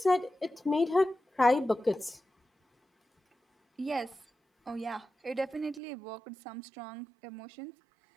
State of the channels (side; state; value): left; drops out; at 5.8 s